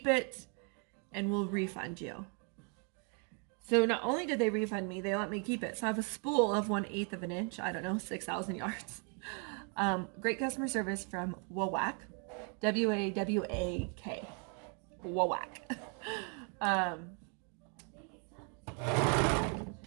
it and we'll refund you. So not only did they refund me, they let me keep it. So I have a spool of 1/8 of an inch, I don't know, 6,000 yards. Great customer service from Wawak, Wawak. Wawak. um,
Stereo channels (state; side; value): quieter; left; 38.7 dB